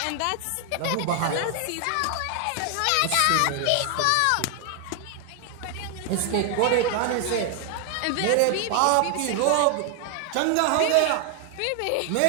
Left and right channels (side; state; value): both; different; correlation 0.00